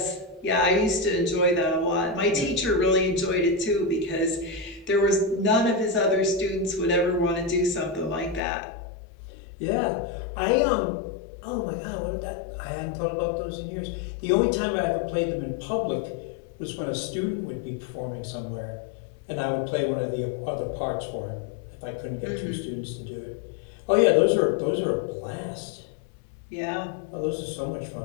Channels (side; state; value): right; drops out; at 8.4 s